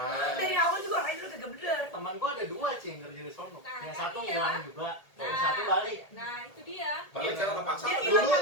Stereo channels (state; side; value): late; right; 1.8 ms